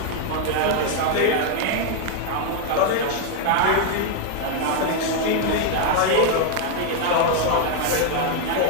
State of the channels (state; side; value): different; both; correlation 0.01